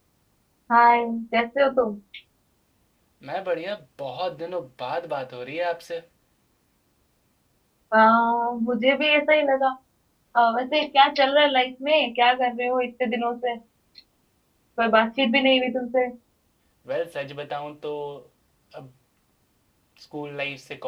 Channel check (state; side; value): identical; both; correlation 1.00